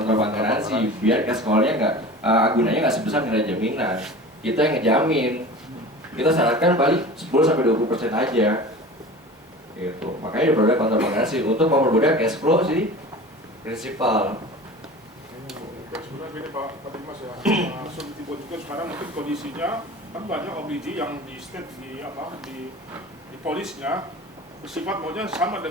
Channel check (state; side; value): normal; both; correlation 0.37